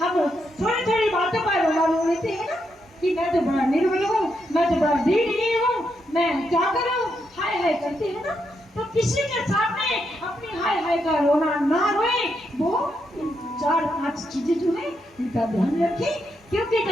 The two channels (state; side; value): normal; both; correlation 0.81